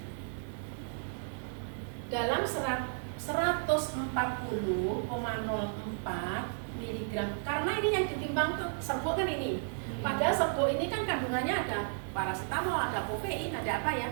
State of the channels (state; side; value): silent; left; digital silence